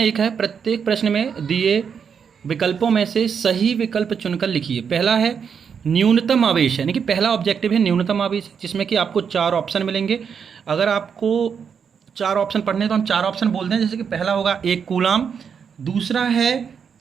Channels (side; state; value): left; quieter; 6.9 dB